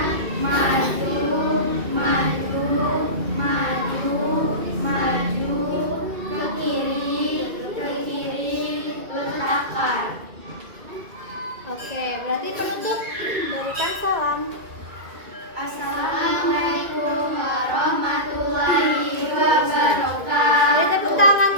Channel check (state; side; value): late; left; 2.3 ms